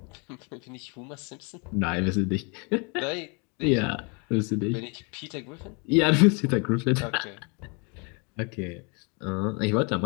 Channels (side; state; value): right; quieter; 33.3 dB